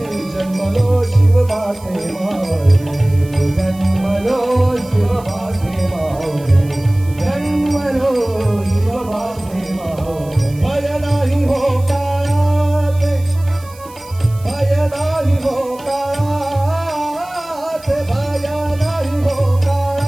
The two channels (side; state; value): right; noise; hiss, 23 dB below the sound